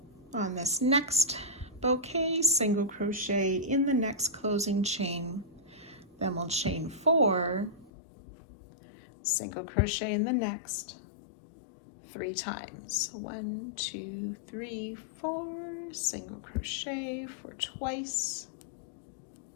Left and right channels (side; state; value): right; drops out; at 7.9 s